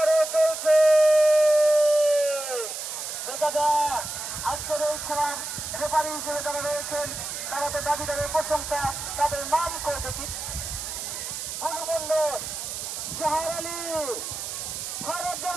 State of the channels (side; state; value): right; noise; hiss, 6 dB below the sound